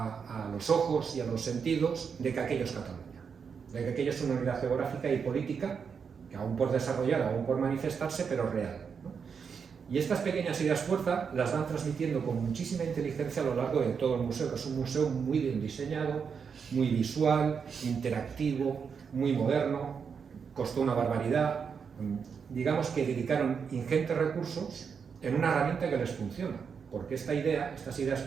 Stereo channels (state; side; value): quieter; left; 6.3 dB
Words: los ojos y a los sentidos de que aquello es Cataluña, de que aquello es una unidad geográfica y política, que aún por desarrollar, aún por manifestarse, pero real, ¿no? Y estas pequeñas ideas fuerza las van transmitiendo con muchísima inteligencia a lo largo de todo el museo, que es un museo muy bien diseñado, muy visual, interactivo, muy moderno, costó una barbaridad. Digamos que dedicaron ingentes recursos en una herramienta que les funciona, porque estas ideas